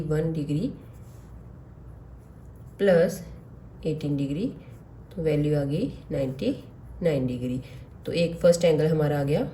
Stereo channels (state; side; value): identical; both; correlation 1.00